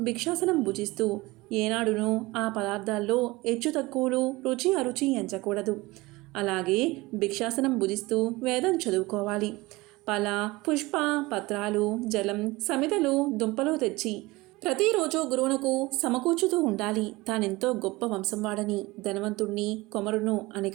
భిక్షాసనం భుజిస్తూ ఏనాడునూ ఆ పదార్థాల్లో హెచ్చు తక్కువలు, రుచి అరుచి ఎంచకూడదు. అలాగే భిక్షాసనం భుజిస్తూ వేదం చదువుకోవాలి. ఫల, పుష్ప, పత్రాలు, జలం, సమితలు, దుంపలు తెచ్చి ప్రతిరోజు గురువునకు సమకూర్చుతూ ఉండాలి. తానెంతో గొప్ప వంశం వాడని, ధనవంతుణ్ణి, కొమరును అని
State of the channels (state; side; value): quieter; left; 21.5 dB